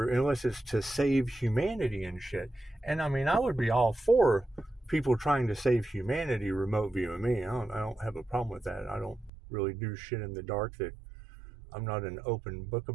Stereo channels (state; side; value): drops out; left; at 9.3 s